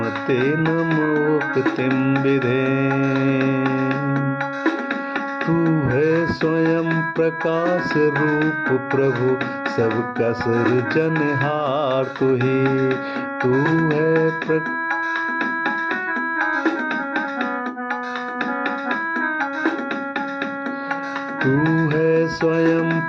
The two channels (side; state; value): both; identical; correlation 1.00